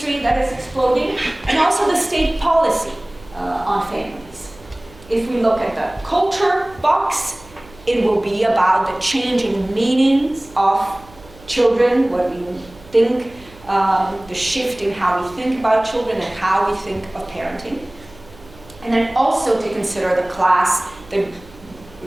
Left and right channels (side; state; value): right; noise; hum, 23 dB below the sound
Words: that is exploding, and also the state policy on families. If we look at the culture box, it will be about the changing meanings of children, what we think, the shift in how we think about children and how we think of parenting. And then also to consider the class, the